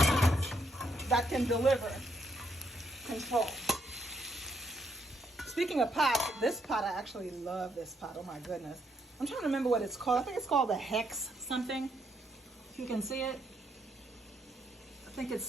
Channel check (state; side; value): normal; both; correlation 0.75